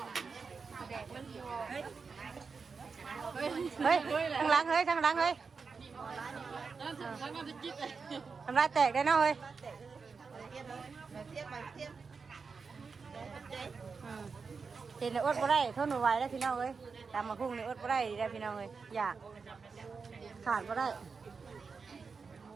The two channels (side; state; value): left; quieter; 5.0 dB